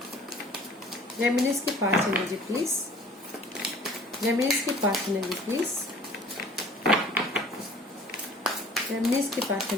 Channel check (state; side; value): normal; both; correlation 0.49